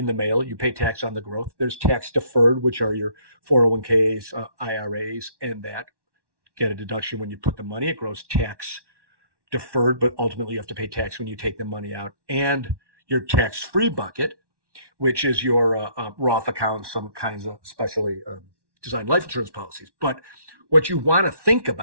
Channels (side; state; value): left; late; 1.1 ms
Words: the mail. You pay tax on the growth. There's tax deferred, which are your 401ks, IRAs, and that get a deduction when you put the money. It grows tax deferred, but ultimately you have to pay tax when you take the money out. And your tax-free bucket, which is your Roth account, some kinds of specially designed life insurance policies. But what you want to think